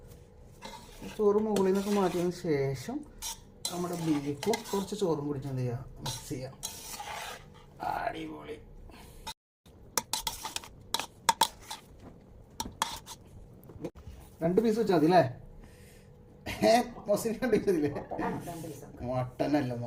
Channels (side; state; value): both; identical; correlation 1.00